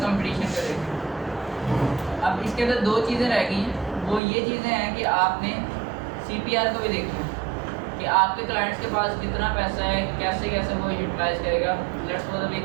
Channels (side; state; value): left; drops out; at 4.2 s